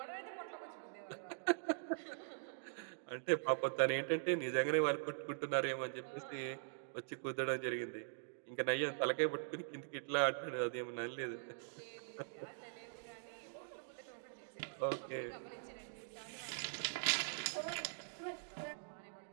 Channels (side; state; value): left; silent; digital silence